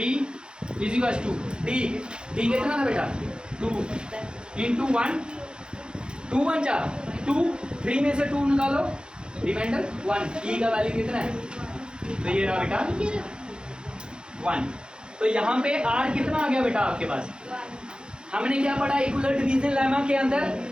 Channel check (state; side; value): late; left; 0.049 ms